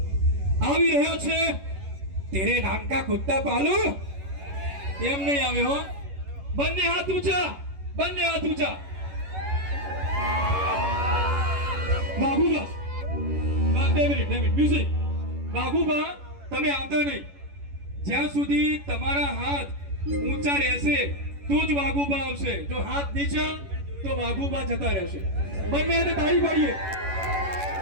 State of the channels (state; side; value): late; left; 11 ms